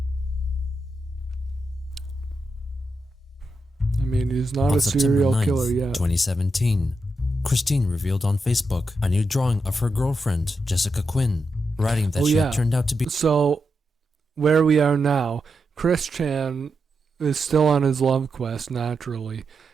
mean, he's not On a serial September 9th, killer yet. 2017, Christine revealed on Facebook a new drawing of her girlfriend, Jessica Quinn, writing that she had turned out to be... So, where we are now, Christian is still on his love quest, naturally.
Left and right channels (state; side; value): normal; both; correlation 0.86